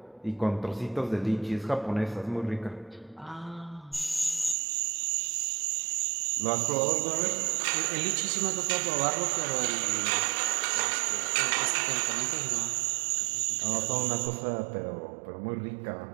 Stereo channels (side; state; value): left; drops out; at 4.5 s